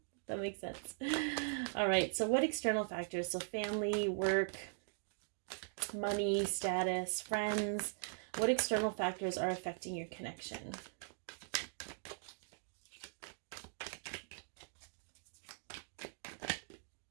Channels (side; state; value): left; silent; digital silence